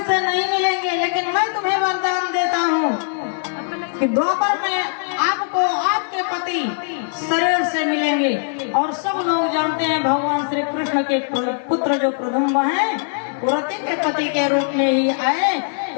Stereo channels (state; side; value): silent; right; digital silence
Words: से नहीं मिलेंगे, लेकिन मैं तुम्हें वरदान देता हूँ कि द्वापर में आपको आपके पति शरीर से मिलेंगे। और सब लोग जानते हैं भगवान श्री कृष्ण के पुत्र जो प्रदुम्न हैं वो रति के पति के रूप में ही आए।